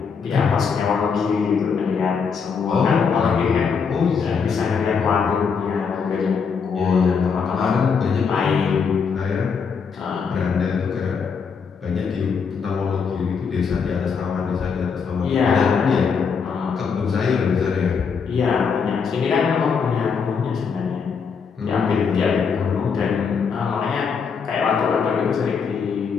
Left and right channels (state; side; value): quieter; right; 6.0 dB